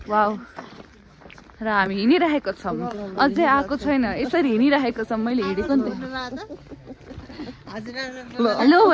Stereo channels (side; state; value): both; identical; correlation 1.00